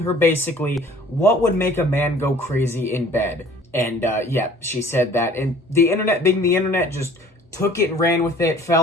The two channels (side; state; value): both; normal; correlation 0.51